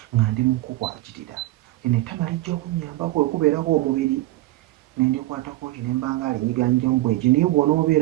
nga ndi mu kukwatira, lino ettama lijja kunnyambako okubeerako omubiri ne ndikwatako nti ne mba nga alinyiganyigamu bweki, naye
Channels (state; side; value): quieter; left; 17.1 dB